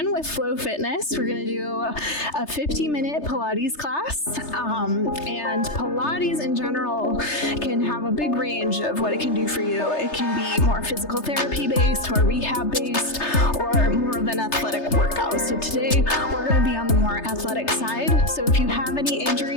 with Flow Fitness. We're going to do a 50-minute Pilates class. And Pilates in general can have a big range of what it can do for you. It can be more physical therapy based, more rehab based, or more of an athletic workout. So today we're going to be on the more athletic side. So if you have any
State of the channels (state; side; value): late; right; 3.3 ms